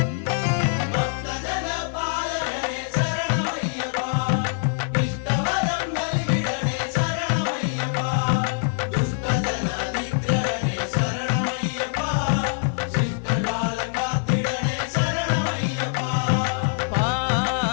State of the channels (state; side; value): silent; right; 57 dB below the other